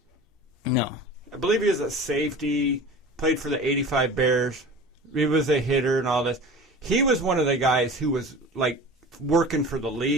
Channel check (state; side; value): normal; both; correlation 0.37